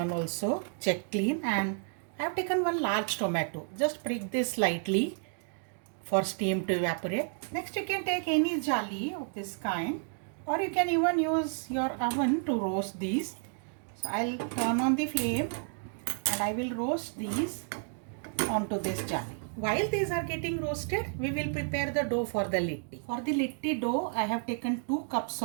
also check clean, and I have taken one large tomato. Just prick this slightly for steam to evaporate. Next you can take any jali of this kind, or you can even use your oven to roast these. So I'll turn on the flame and I will roast these onto this jali. While these are getting roasted, we will prepare the dough for the litti. For the litti dough, I have taken 2 cups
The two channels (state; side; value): silent; left; 57 dB below the other